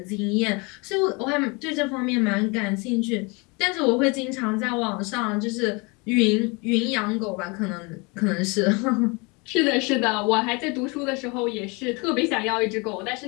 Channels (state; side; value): quieter; right; 28.7 dB